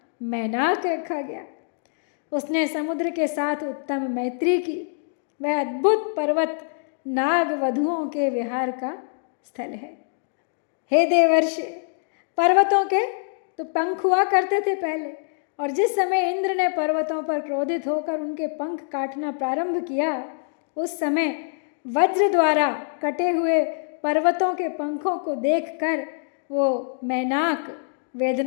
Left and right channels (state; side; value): silent; right; digital silence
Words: मैनाक रखा गया। उसने समुद्र के साथ उत्तम मैत्री की। वह अद्भुत पर्वत नाग वधुओं के विहार का स्थल है। हे देवर्षि, पर्वतों के तो पंख हुआ करते थे पहले, और जिस समय इंद्र ने पर्वतों पर क्रोधित होकर उनके पंख काटना प्रारंभ किया, उस समय वज्र द्वारा कटे हुए पर्वतों के पंखों को देखकर वो मैनाक